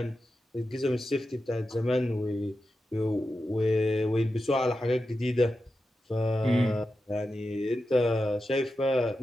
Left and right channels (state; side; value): normal; both; correlation 0.90